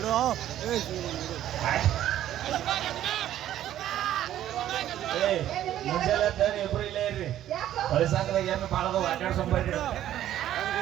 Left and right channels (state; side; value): quieter; left; 12.1 dB